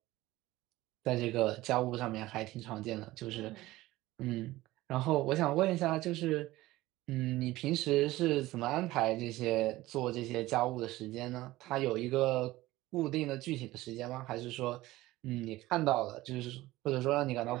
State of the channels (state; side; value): quieter; left; 17.7 dB